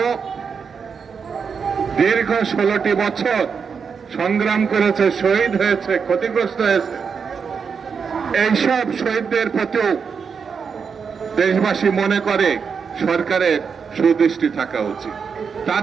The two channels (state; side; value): quieter; left; 6.1 dB